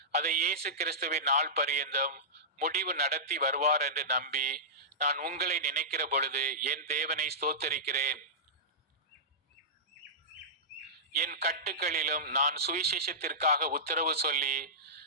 அதை இயேசு கிறிஸ்துவின் நாள் பரியந்தம் முடிவு நடத்தி வருவார் என்று நம்பி நான் உங்களை நினைக்கிற பொழுது என் தேவனை ஸ்தோத்தரிக்கிறேன். என் கட்டுக்களிலும் நான் சுவிசேஷத்திற்காக உத்தரவு சொல்லி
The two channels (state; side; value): normal; both; correlation -0.17